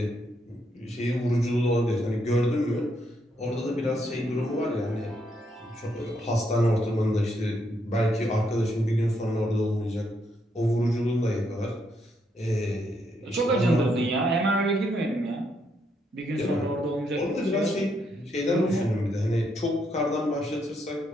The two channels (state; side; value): normal; both; correlation 0.76